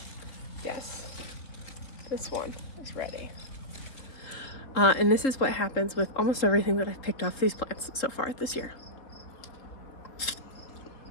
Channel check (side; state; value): right; late; 3.8 ms